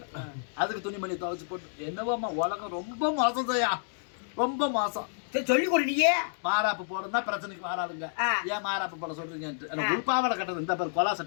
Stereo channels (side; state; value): right; silent; digital silence